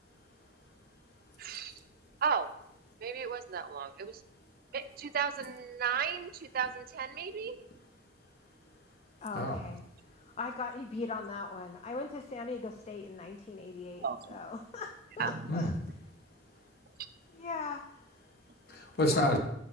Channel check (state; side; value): normal; both; correlation 0.09